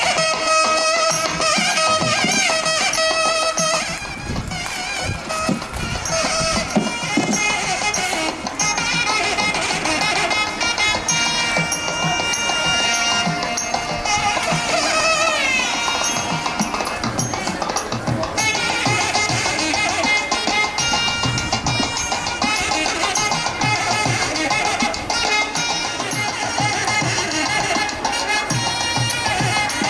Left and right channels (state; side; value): identical; both; correlation 1.00